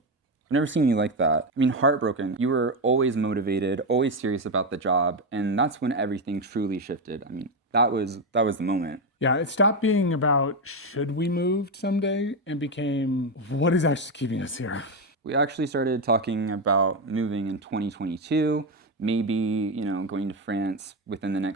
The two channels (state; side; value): normal; both; correlation 0.10